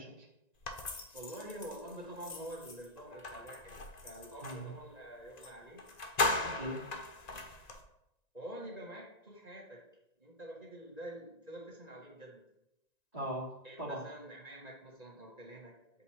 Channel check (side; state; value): right; late; 1.9 ms